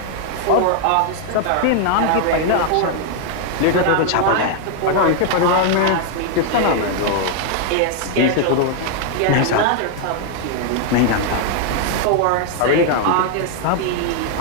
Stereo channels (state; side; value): different; both; correlation 0.00